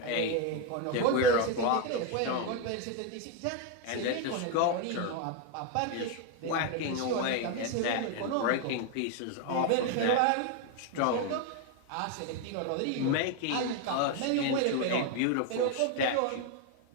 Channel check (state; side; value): different; both; correlation 0.02